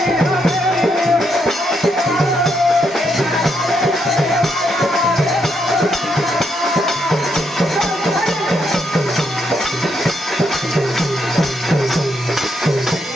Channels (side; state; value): both; normal; correlation 0.77